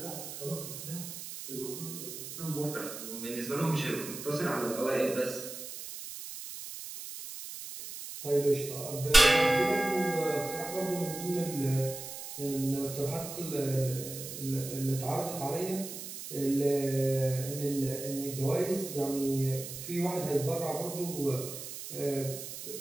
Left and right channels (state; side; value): noise; right; hiss, 9 dB below the sound